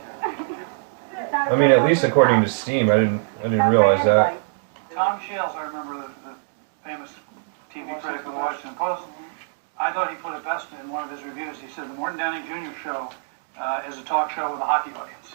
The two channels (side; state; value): left; silent; digital silence